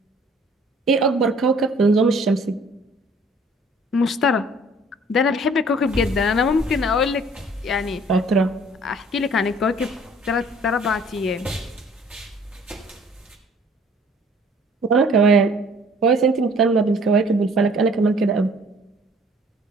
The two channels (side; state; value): both; normal; correlation 0.55